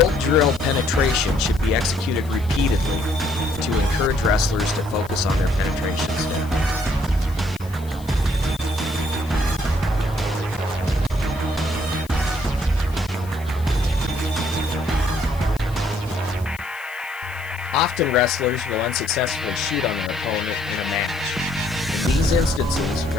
drill penetration should be executed repeatedly to encourage wrestlers to focus on their penetration step. Often wrestlers will unsuccessfully shoot on their opponent in a match. In these instances,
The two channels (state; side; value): noise; left; hiss, 21 dB below the sound